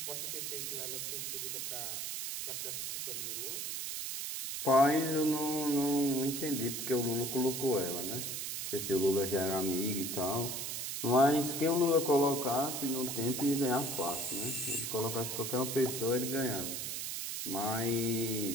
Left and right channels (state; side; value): noise; right; hiss, 4 dB below the sound